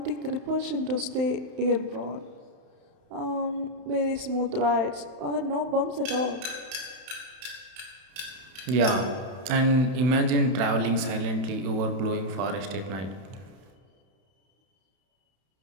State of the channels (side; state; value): left; late; 31 ms